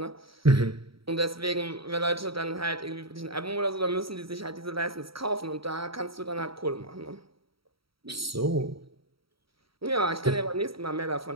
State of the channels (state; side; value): late; left; 0.75 ms